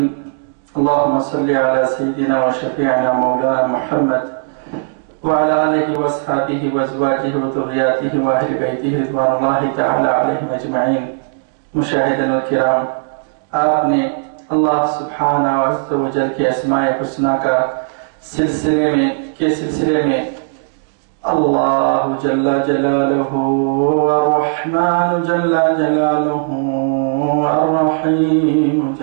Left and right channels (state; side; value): silent; left; digital silence